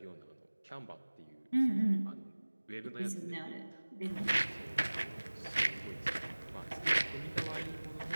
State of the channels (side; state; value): both; inverted; correlation -1.00